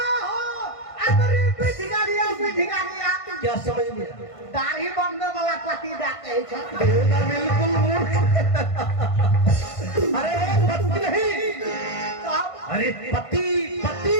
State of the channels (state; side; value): late; right; 1.5 ms